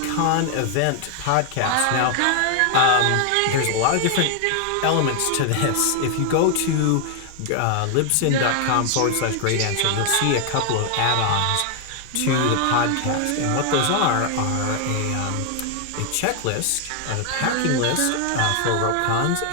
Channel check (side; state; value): both; different; correlation 0.00